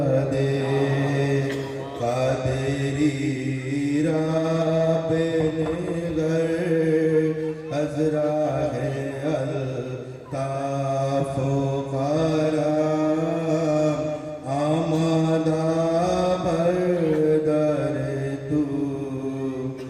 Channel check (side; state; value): both; identical; correlation 1.00